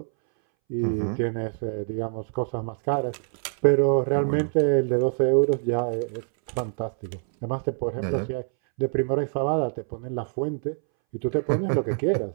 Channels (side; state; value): left; silent; 61 dB below the other